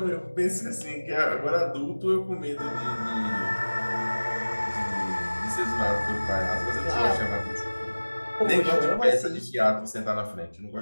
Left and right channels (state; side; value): inverted; both; correlation -1.00